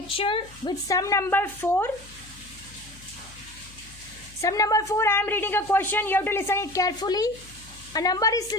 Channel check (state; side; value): noise; left; hum, 21 dB below the sound